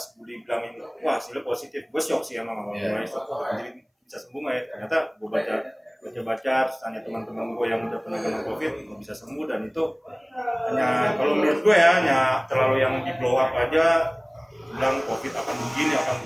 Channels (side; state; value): both; identical; correlation 1.00